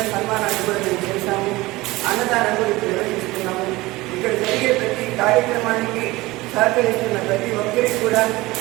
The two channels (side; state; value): left; quieter; 20.2 dB